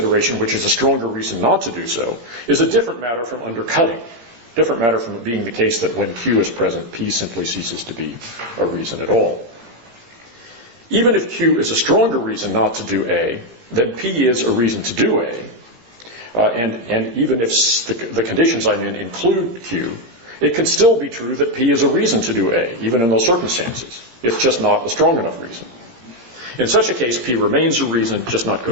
which is a stronger reason not to do so, is a different matter from undercutting. Different matter from it being the case that when Q is present, P simply ceases to be a reason at all. Even if Q is a stronger reason not to do A, then P is a reason to do A, and even if the conditions I'm in include Q, it can still be true that P is a reason to do A, even in those circumstances. It's just not a strong enough reason. In such a case, P remains a reason, just not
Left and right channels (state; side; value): late; left; 17 ms